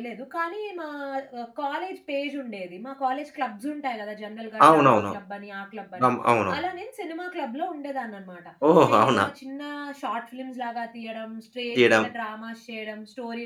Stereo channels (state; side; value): identical; both; correlation 1.00